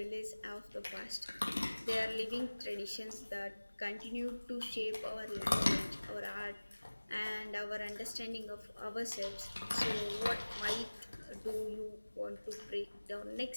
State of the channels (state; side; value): inverted; both; correlation -1.00